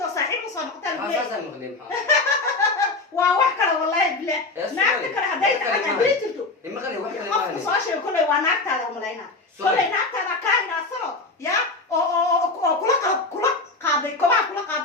صاحب وصار مقتل ولا أساسا مقدم وواحد والله بلا نعرف كلا هدايت أنا بيتلتو إما غير واحد ما صاشي كله ونعرف هذا ملاينا كله نعرف هذا كائن أصلا يا أو كل قاضي كل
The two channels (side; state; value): right; quieter; 3.5 dB